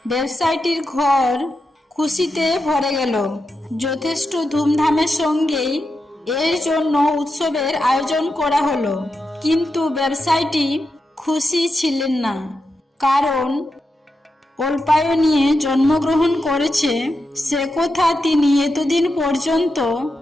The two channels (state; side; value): normal; both; correlation 0.87